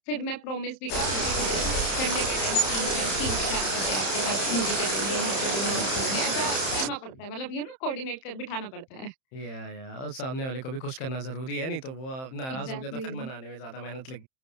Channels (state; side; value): late; right; 31 ms